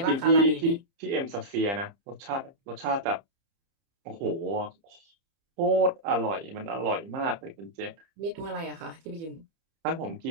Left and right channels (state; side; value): late; left; 30 ms